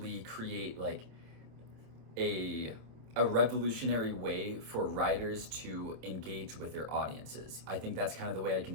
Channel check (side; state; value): left; late; 27 ms